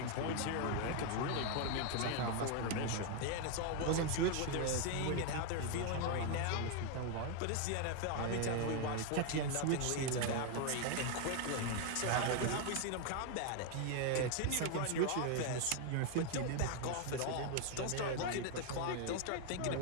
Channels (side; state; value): both; different; correlation 0.01